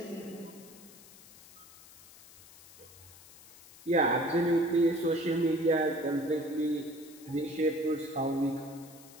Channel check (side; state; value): left; noise; hiss, 21 dB below the sound